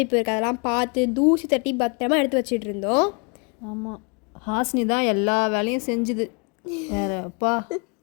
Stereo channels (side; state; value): right; quieter; 34.3 dB